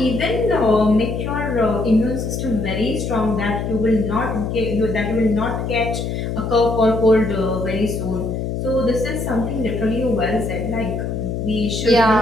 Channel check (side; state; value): left; noise; hum, 3 dB below the sound